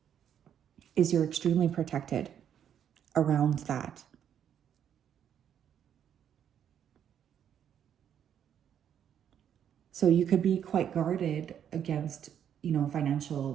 is you're extremely protected around that. So you could be quite guarded against, you know,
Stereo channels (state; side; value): quieter; left; 9.2 dB